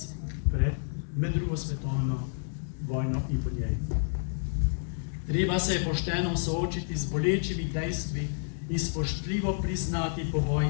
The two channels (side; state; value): right; silent; digital silence